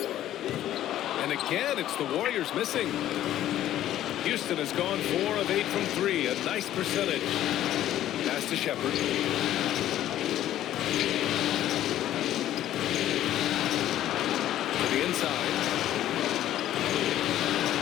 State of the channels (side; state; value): right; quieter; 12.6 dB